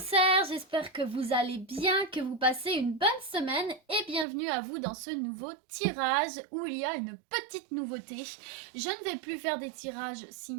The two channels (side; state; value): left; drops out; at 4.2 s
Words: j'espère que vous allez bien, que vous passez une bonne semaine et bienvenue à vous dans ce nouveau tirage où il y a une petite nouveauté. Je ne vais plus faire des tirages